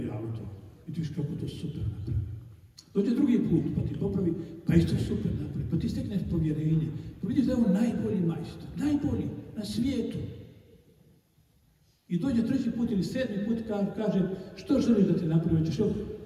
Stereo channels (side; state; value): both; identical; correlation 1.00